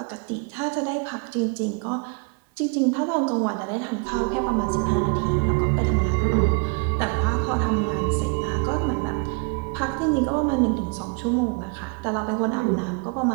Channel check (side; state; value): left; quieter; 34.3 dB